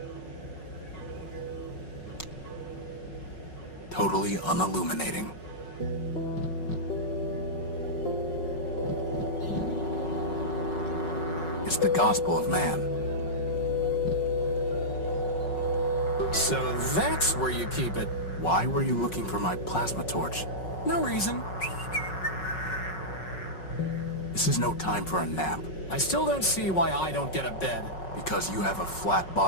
Totally unilluminating. It's the gospel of man. So that's where you keep it. Why were you looking for my plasma torch? No reason. This is no time for a nap. I still don't see why I don't get a bed. Because you have a flat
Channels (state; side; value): late; right; 5.4 ms